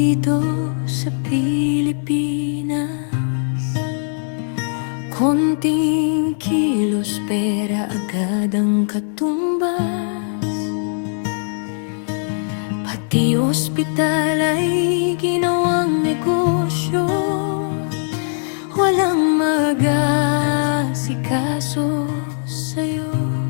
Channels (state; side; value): silent; right; digital silence